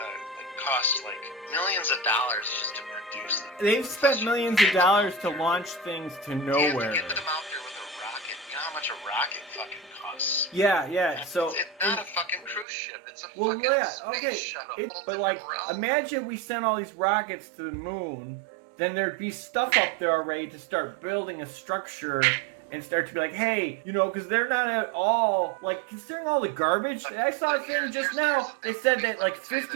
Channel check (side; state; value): left; drops out; at 12.7 s